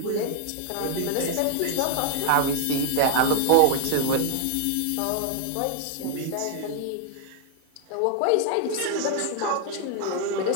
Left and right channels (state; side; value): different; both; correlation 0.00